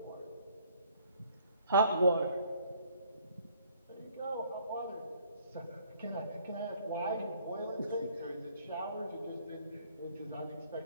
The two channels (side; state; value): both; inverted; correlation -0.61